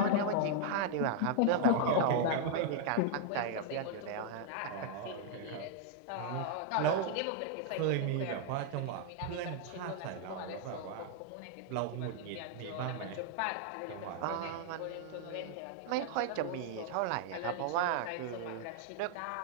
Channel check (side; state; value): both; different; correlation 0.00